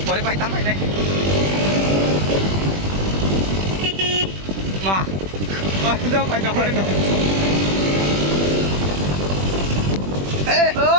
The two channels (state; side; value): late; left; 21 ms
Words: boleh pakai tambah ini. Mah, udah pakai tambah itu.